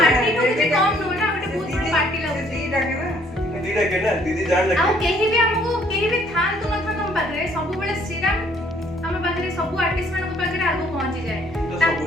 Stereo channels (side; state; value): both; normal; correlation 0.63